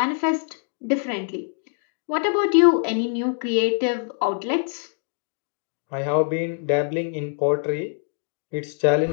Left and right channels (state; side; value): silent; right; digital silence